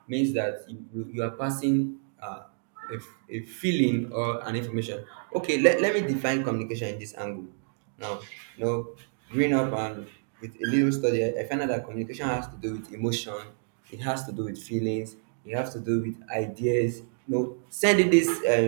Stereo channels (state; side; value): silent; left; digital silence